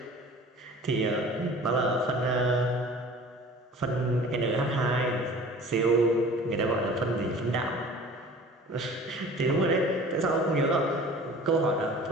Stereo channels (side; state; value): both; normal; correlation 0.44